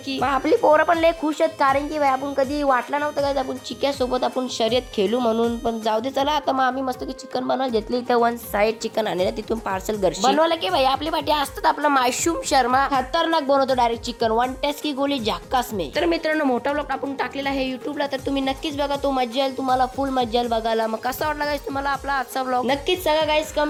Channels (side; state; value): both; identical; correlation 1.00